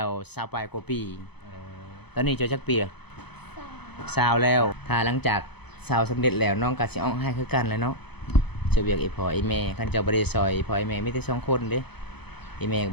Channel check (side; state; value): right; late; 0.98 ms